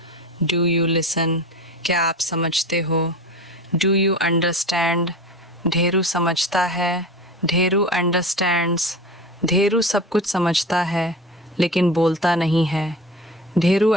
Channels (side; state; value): both; normal; correlation 0.31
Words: Do you listen. क्या आप समझते हो? Do you understand. ढेरू समझता है, ढेरू अंडरस्टैंड्स। ढेरू सब कुछ समझता है लेकिन बोलता नहीं है। Dheru